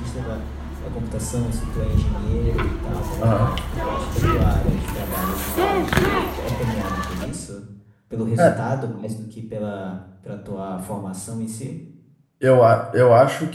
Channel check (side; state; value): both; identical; correlation 1.00